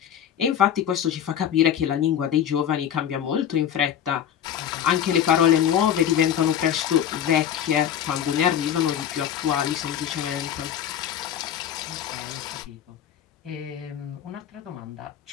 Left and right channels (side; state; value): right; quieter; 9.6 dB